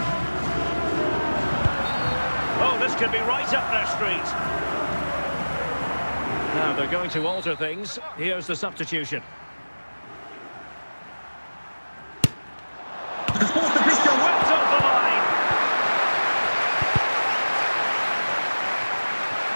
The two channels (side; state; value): both; inverted; correlation -1.00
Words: Oh, this could be right up their street. Now they're going to alter things. Here's the substitution. The fourth official Whipped off the line.